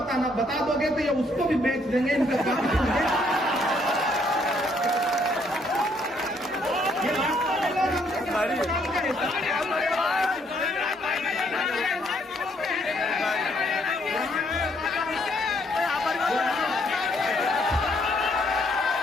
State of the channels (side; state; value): both; normal; correlation 0.69